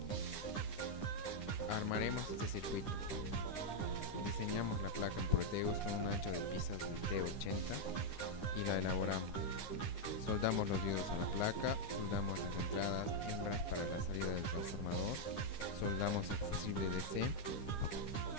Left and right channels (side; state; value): right; late; 9.9 ms